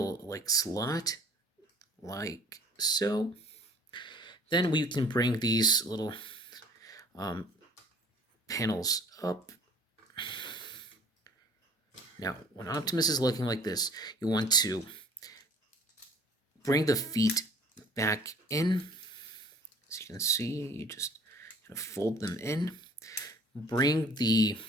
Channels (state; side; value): normal; both; correlation 0.51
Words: like slot, like so. Then we can bring these little panels up. Now, when Optimus is looking like this, you want to bring the feet back in. As you can see, you just kind of fold them in. Bring these